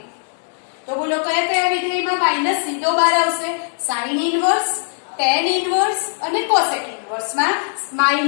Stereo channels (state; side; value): silent; right; digital silence